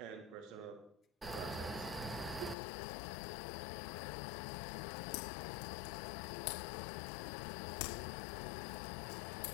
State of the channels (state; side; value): drops out; right; at 2.6 s